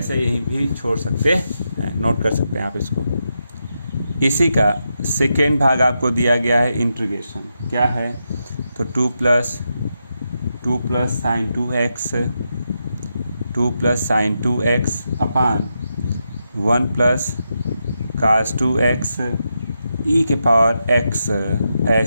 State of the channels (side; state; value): both; inverted; correlation -0.85